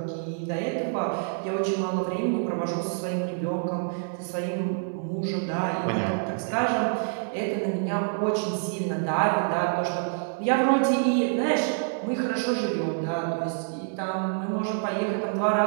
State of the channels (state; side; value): silent; left; digital silence